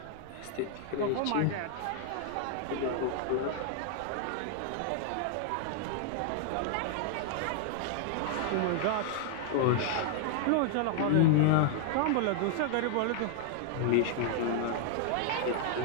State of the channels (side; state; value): both; different; correlation -0.01